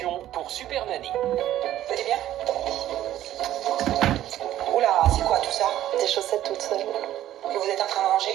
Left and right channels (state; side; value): quieter; left; 12.9 dB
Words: pour Super Nanny. Vous allez bien? Oula, c'est quoi tout ça? Des chaussettes toutes seules. Que vous êtes en train de